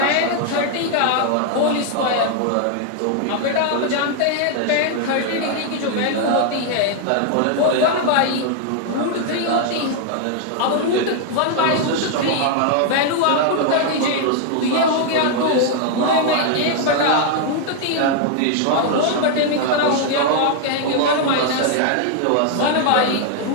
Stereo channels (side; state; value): both; different; correlation 0.00